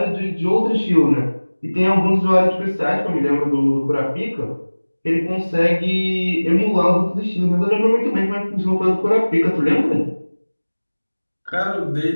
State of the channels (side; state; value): both; inverted; correlation -1.00